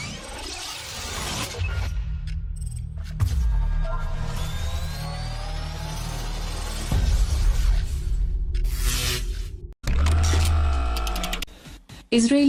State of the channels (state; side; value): identical; both; correlation 1.00